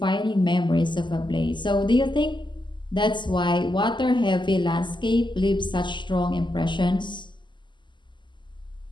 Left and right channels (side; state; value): right; late; 0.22 ms